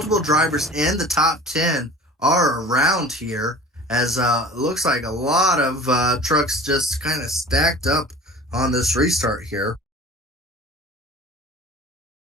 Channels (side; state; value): both; normal; correlation 0.42